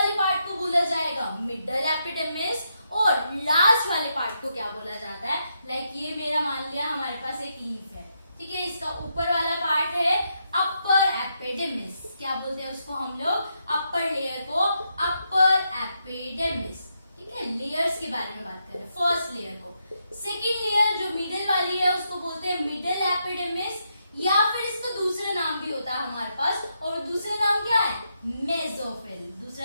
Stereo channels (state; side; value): inverted; both; correlation -0.81